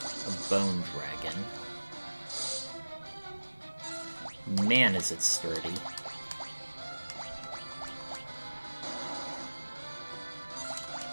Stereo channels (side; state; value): both; inverted; correlation -1.00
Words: A Bone Dragon. Man, is it sturdy.